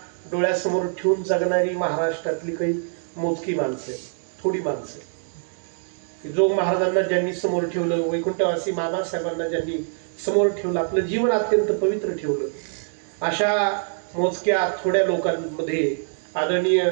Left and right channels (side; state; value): left; silent; digital silence